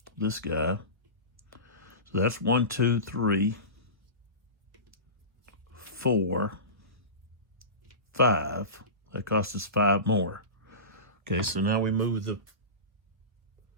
this guy. So that's 1, 2, 3, 4, 5. That costs us 5 more. Okay, so now we move the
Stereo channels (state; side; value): late; left; 1.4 ms